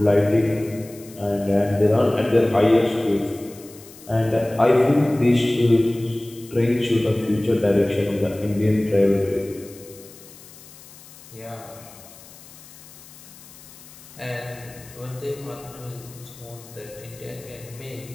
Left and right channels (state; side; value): noise; left; hiss, 20 dB below the sound